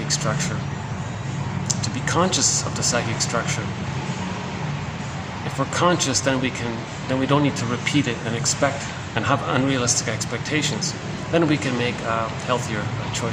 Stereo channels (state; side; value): identical; both; correlation 1.00